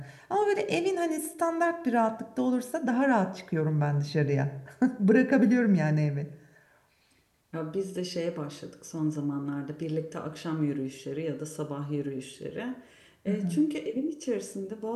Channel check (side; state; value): both; identical; correlation 1.00